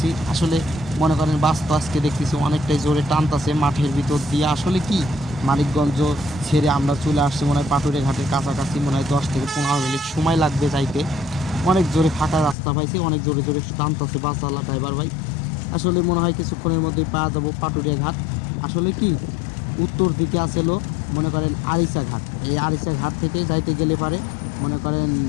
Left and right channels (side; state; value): right; drops out; at 12.6 s